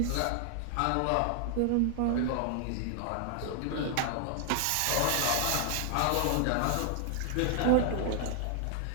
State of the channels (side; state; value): both; different; correlation 0.00